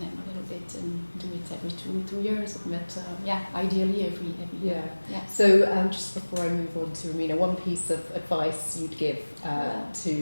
a little bit and do it every two years. But ideally every year. Yeah. So just before I move on to Romina, one piece of advice you'd give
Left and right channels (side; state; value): both; inverted; correlation -1.00